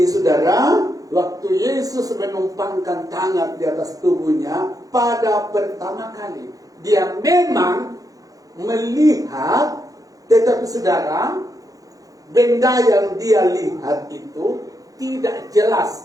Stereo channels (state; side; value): late; left; 0.17 ms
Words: saudara, waktu Yesus menumpangkan tangan di atas tubuhnya pada pertama kali, dia memang melihat, tetapi saudara, benda yang dia lihat itu tidak